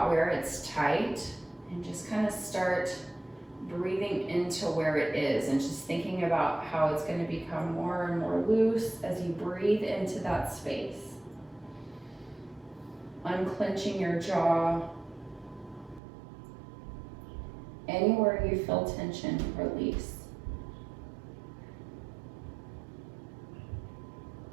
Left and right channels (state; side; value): drops out; left; at 16.0 s